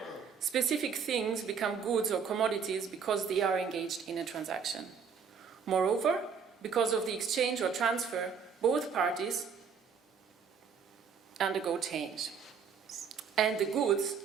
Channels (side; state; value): left; quieter; 6.3 dB